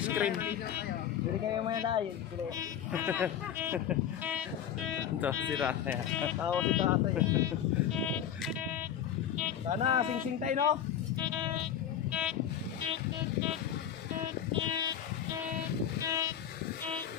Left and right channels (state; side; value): quieter; right; 9.6 dB